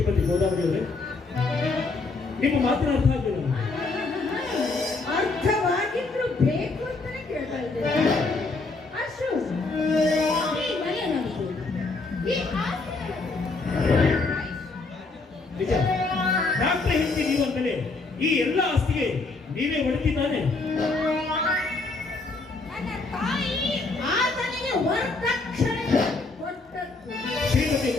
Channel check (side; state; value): right; quieter; 3.7 dB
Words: ಗೋದಾವರಿ ಅವರೇ, ನಿಮ್ಮ ಮಾತಿನ ಅರ್ಥ ಆಗಲಿಲ್ಲ. ಅರ್ಥವಾಗಿದ್ರು ಬೇಕು ಅಂತಾನೆ ಕೇಳ್ತಾ ಇದ್ದೇನೆ. ಅಶೋಕ್, ಈ ಮನೆ ನಮ್ದು, ಈ ಆಸ್ತಿ ನಿಜ, ಡಾಕ್ಟರ್ ಹೆಂಡತಿ ನೀವು ಅಂತಲೇ ಈ ಎಲ್ಲ ಆಸ್ತಿಗೆ ನೀವೇ ಹೊಡೆದಿದ್ದಾನೆ. ನನ್ನ ತಾಯಿ ಆತನಿಗೆ ವರದಕ್ಷಿಣೆ ಕೊಟ್ಟದ್ದು. ಶ್ರೀಮತಿ